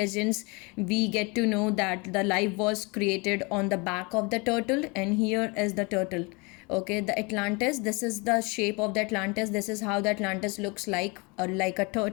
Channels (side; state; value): right; quieter; 28.8 dB